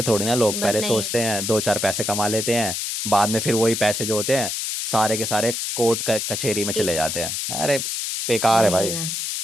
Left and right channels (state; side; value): noise; left; hiss, 3 dB below the sound